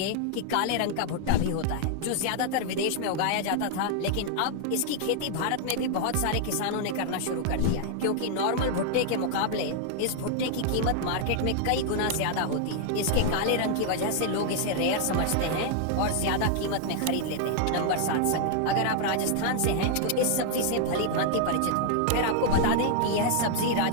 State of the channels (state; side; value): different; both; correlation 0.00